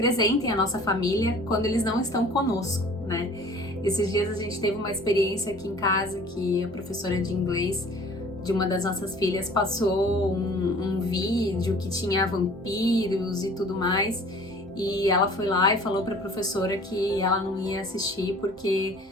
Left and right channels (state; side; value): normal; both; correlation 0.48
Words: a nossa família quando eles não estão conosco, né? Esses dias a gente teve uma experiência aqui em casa que a professora de inglês de uma das nossas filhas passou um vídeo que tinha vampiros e tudo mais, e ela foi lá e falou para a professora que ela não ia assistir porque